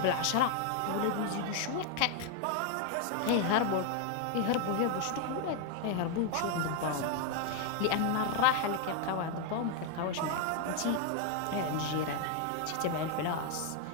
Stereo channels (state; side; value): different; both; correlation 0.01